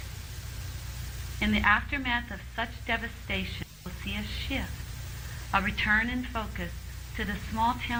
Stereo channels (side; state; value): both; identical; correlation 1.00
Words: In the aftermath of such devastation, we'll see a shift, a return in focus to the small